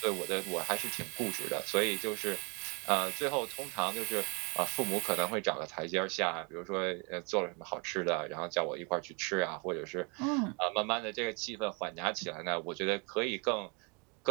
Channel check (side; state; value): left; quieter; 32.8 dB